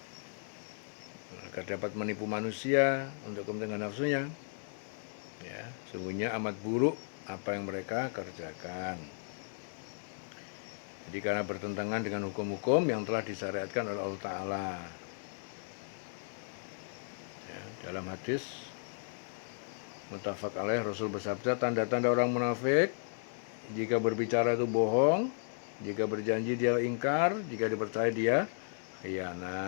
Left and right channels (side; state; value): right; silent; digital silence